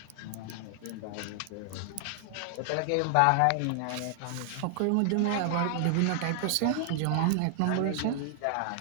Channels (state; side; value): different; both; correlation 0.00